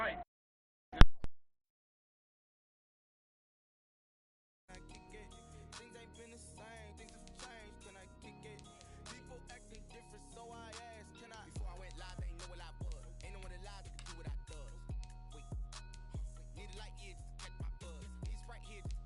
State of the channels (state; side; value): identical; both; correlation 1.00